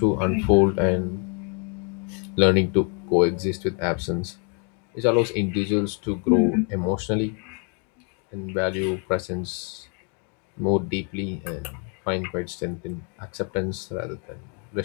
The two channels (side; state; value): right; quieter; 37.5 dB